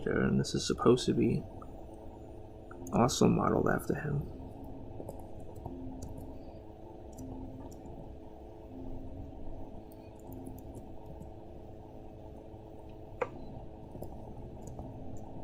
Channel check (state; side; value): identical; both; correlation 1.00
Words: and this is supposed to be also modeled after him.